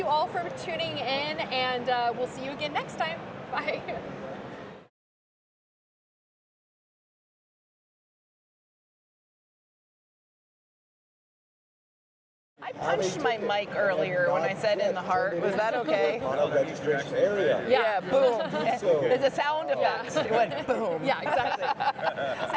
all for tuning in, and we'll see you again next time. Bye. I punched my mic earlier when I said in the heart. Was that okay? Registration area. Yeah, boom. There's a sound effect. It went boom. Yeah, exactly.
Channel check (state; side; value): identical; both; correlation 1.00